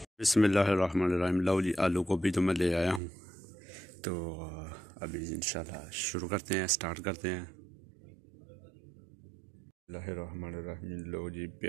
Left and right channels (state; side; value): drops out; left; at 3.0 s